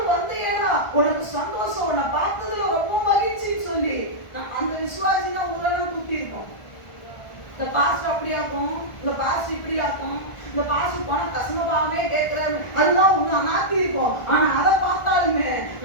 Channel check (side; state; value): right; late; 1.4 ms